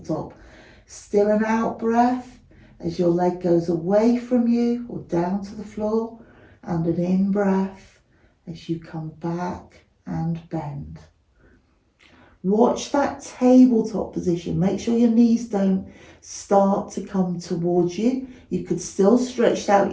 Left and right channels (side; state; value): both; identical; correlation 1.00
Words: Still an out breath as your leg goes away from you or down to the floor, and an in breath as you come back and bend. Watch that tabletop position. Make sure your knees don't start to come towards you. You could still stretch